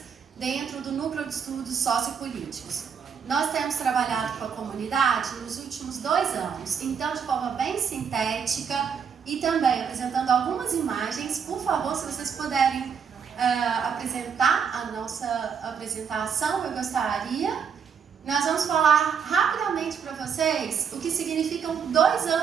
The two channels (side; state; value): left; quieter; 6.9 dB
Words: dentro do Núcleo de Estudos Sociopolíticos. Nós temos trabalhado com a comunidade nos últimos 2 anos, então de forma bem sintética e também apresentando algumas imagens. Por favor, se vocês puderem apresentar a nossa apresentação, eu gostaria. Nós vamos falar rapidamente para vocês o que significam 2